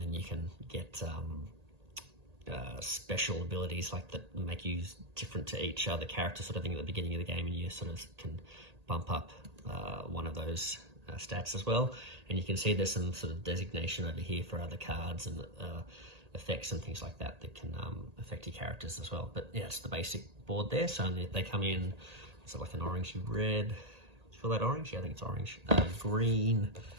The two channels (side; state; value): left; late; 1.8 ms